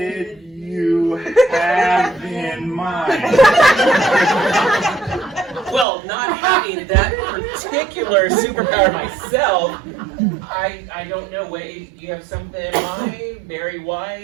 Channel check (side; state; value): left; drops out; at 5.9 s